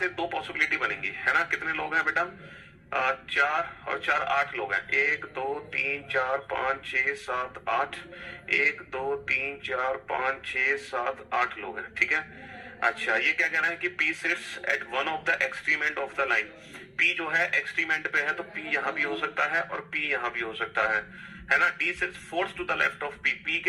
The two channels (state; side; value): identical; both; correlation 1.00